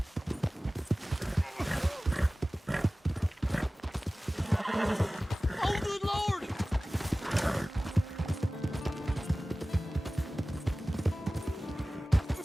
Oh, good Lord!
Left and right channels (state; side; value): normal; both; correlation 0.97